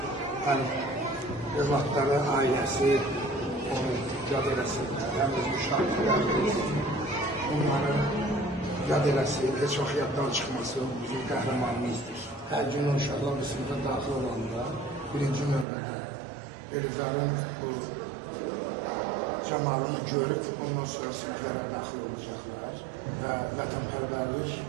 övladları, ailəsi, onu yad eləsinlər, həm öz müşahidlərimiz, onların yad eləsin, heç vaxt yaddan çıxmasın, bizim qəhrəmanımızdır. Hər gün uşaqlar bir sınıfa daxil olanda, birinci növbədə Elizarın bu camalını görüb, ondan sonra sınıflara daxil olacaqlar və vətənpərvərlik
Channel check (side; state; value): left; drops out; at 15.7 s